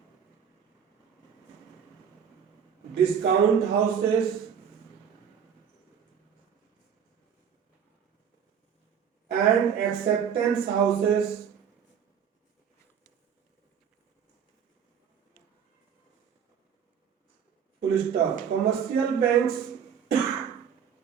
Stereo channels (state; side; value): quieter; left; 7.8 dB